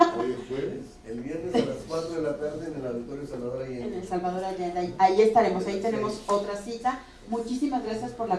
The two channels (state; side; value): identical; both; correlation 1.00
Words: Hoy es jueves. El viernes a las 4 de la tarde en el Auditorio Salvador Allende. En el Salvador Allende. Ahí estaremos. Ahí tenemos otra cita. Muchísimas gracias por